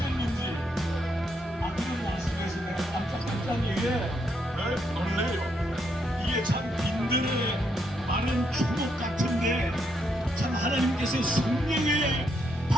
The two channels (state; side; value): normal; both; correlation 0.77